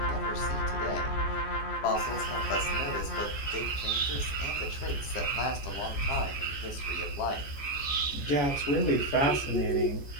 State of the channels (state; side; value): late; right; 14 ms